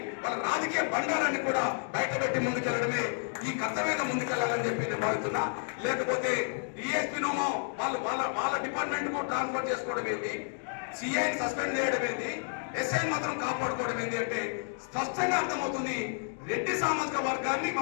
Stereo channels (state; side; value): silent; right; 57 dB below the other